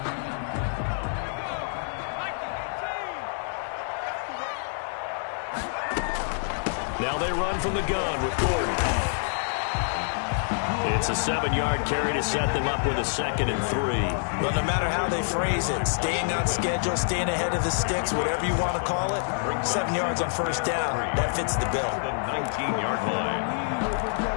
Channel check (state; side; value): silent; right; digital silence